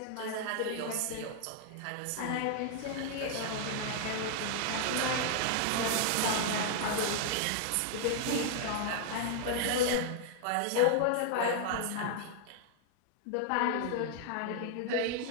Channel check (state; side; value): different; both; correlation 0.00